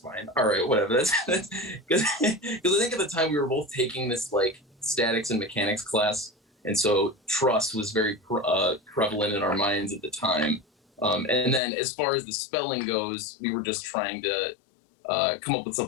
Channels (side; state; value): right; drops out; at 11.6 s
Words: All right, whatever." That's because I think at the time we were both taking this like statics and mechanics class, and so Truss was very prevalent in our minds at the time. And then as far as the spelling goes, we were just trying to come up with